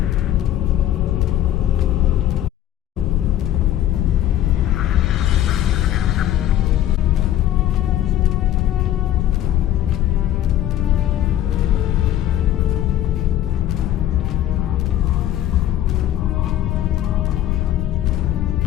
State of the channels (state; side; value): quieter; right; 12.3 dB